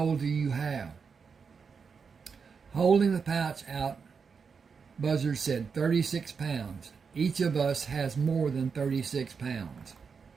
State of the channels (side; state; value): left; quieter; 5.7 dB